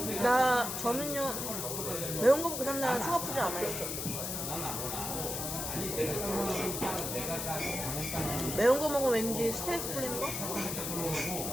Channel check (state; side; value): noise; left; hiss, 4 dB below the sound